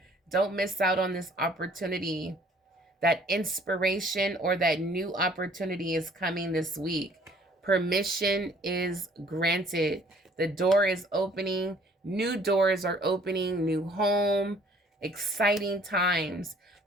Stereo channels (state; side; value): normal; both; correlation 0.57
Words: Don't miss out on this opportunity. That inspiration or that new opportunity is coming this week. Permission is granted. The door is opening. New doors are opening. New home. Exciting times.